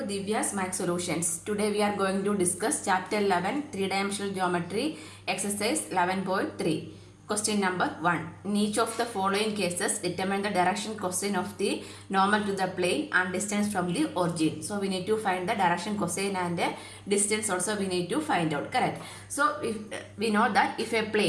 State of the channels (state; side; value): identical; both; correlation 1.00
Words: Math Solutions. Today we are going to discuss Chapter 11, Three-Dimensional Geometry, Exercise 11.3. Question number 1. In each of the following cases, determine the direction cosine of the normal to the plane and distance from the origin. So we need to find the direction cosine and the distance also we need to find out. Correct. So if we know that if a